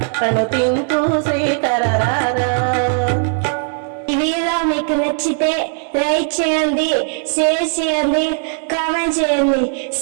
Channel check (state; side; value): silent; left; 61 dB below the other